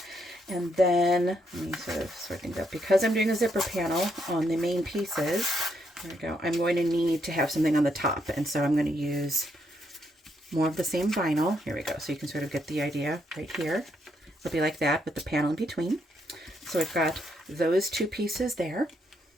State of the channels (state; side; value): normal; both; correlation 0.76